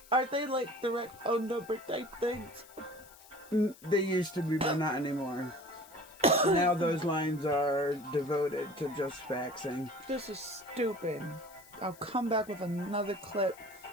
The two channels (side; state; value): left; noise; hiss, 22 dB below the sound